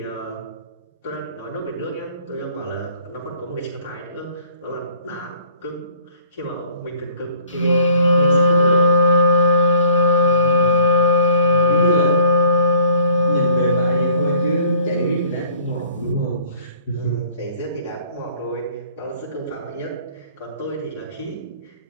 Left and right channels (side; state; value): both; inverted; correlation -0.55